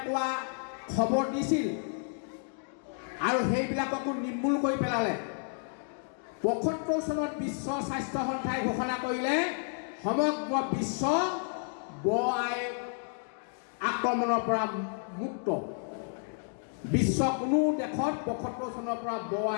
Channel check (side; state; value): right; silent; 57 dB below the other